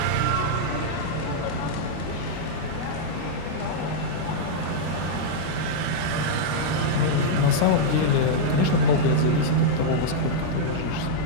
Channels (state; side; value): different; both; correlation -0.03